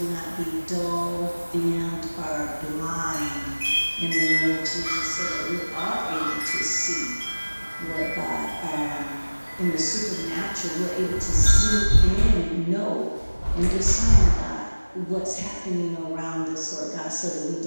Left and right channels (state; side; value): inverted; both; correlation -1.00